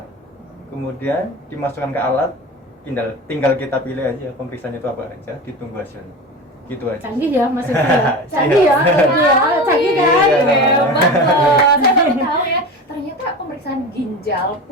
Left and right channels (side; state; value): both; normal; correlation 0.30